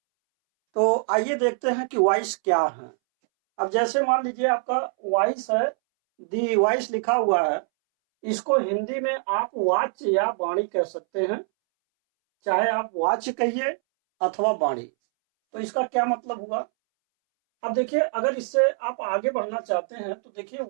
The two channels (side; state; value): left; silent; 62 dB below the other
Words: तो आइए देखते हैं कि वॉइस क्या है। अब जैसे मान लीजिए आपका वॉइस है, दी वॉइस लिखा हुआ है। इसको हिंदी में आप वाच्य या वाणी कह सकते हैं, चाहे आप वाच्य कहिए अथवा वाणी। तो इसका क्या मतलब हुआ। अब देखिए, अगर इससे आप आगे बढ़ना चाहते हैं तो देखिए